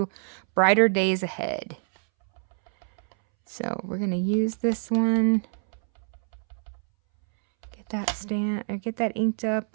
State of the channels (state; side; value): silent; left; 61 dB below the other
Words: brighter days ahead. So we're going to use this one. Get that stamp, or get that inked